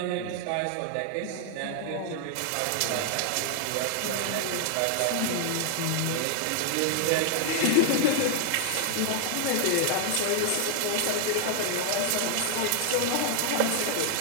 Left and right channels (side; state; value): both; different; correlation 0.00